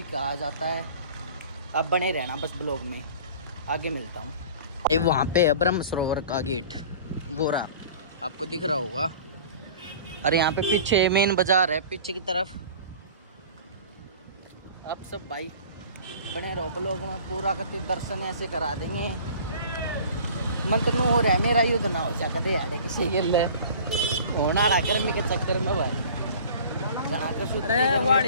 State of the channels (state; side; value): inverted; both; correlation -0.44